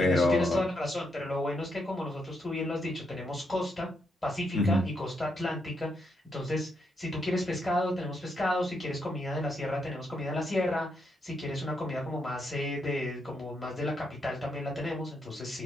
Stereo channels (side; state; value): both; normal; correlation 0.79